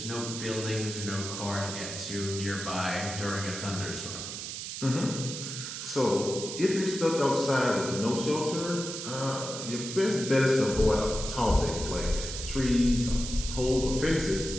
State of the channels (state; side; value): noise; right; hiss, 7 dB below the sound